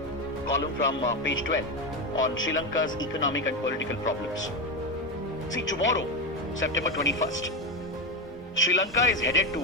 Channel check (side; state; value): both; normal; correlation 0.14